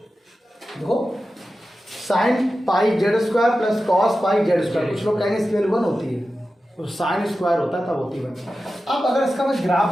देखो sine pi z square plus cos pi z square, कुछ लोग कहेंगे इसकी वैल्यू 1 होती है, तो साइन स्क्वायर होता है तब होती है 1। अब अगर इसका मैं ग्राफ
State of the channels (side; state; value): both; normal; correlation 0.93